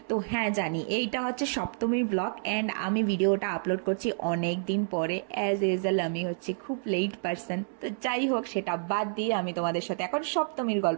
তো হ্যাঁ, জানি এইটা হচ্ছে সপ্তমীর ব্লগ অ্যান্ড আমি ভিডিওটা আপলোড করছি অনেক দিন পরে। অ্যাজ ইউজুয়াল আমি হচ্ছে খুব লেট পারসন, তো যাই হোক সেটা বাদ দিয়ে আমি তোমাদের সাথে এখন সপ্তমীর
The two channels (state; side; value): silent; left; 59 dB below the other